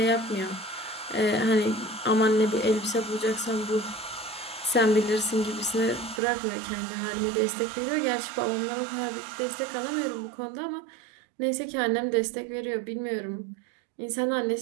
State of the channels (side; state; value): left; drops out; at 6.2 s